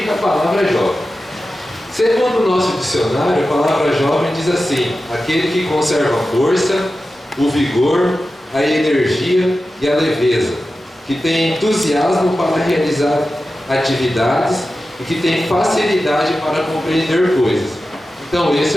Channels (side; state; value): both; normal; correlation 0.93